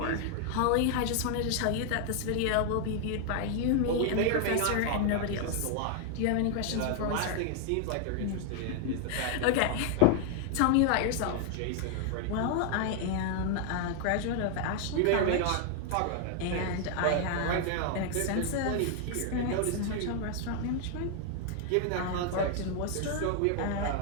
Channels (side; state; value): both; different; correlation 0.00